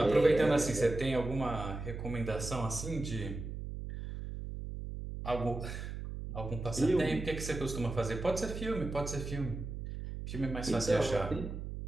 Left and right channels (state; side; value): noise; right; hum, 7 dB below the sound